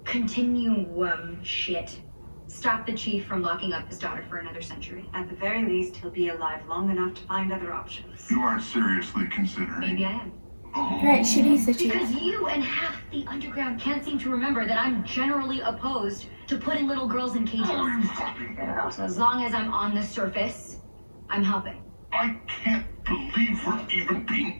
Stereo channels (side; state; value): both; inverted; correlation -1.00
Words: continuum shit stop the chief from locking up his daughter for another century? At the very least, he'll be alive long enough to find other options. You aren't seriously considering. Maybe I am. Oh. Right, she needs the chief. Because you and half the underground can't seem to remember that I'm generally opposed to putting little girls in cages. Oh, you fucking are. So as long as I'm on the surface, I'm helping. I can't believe we're even being